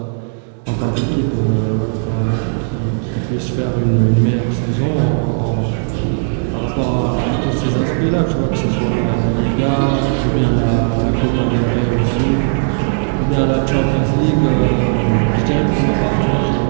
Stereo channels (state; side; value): silent; left; digital silence